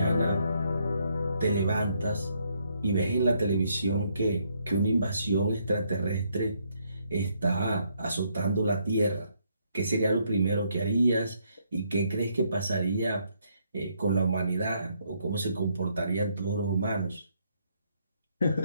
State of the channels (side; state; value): both; inverted; correlation -0.72